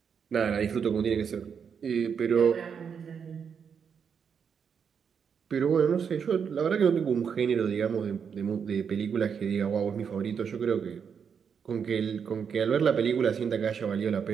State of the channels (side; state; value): left; quieter; 6.9 dB